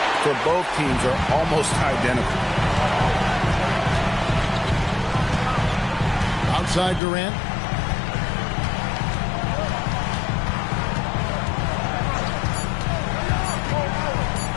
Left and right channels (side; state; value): right; drops out; at 7.0 s